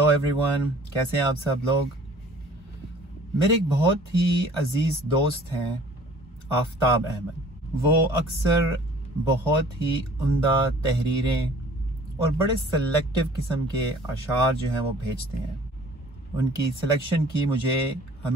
everyone. कैसे हैं आप सब लोग। मेरे एक बहुत ही अजीज़ दोस्त हैं आफ्ताब अहमद। वो अक्सर बहुत ही उम्दा तहरीरें और बड़े सेलेक्टिव किस्म के अशार जो हैं वो भेजते हैं। उनकी सिलेक्शन की मुझे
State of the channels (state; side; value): normal; both; correlation 0.51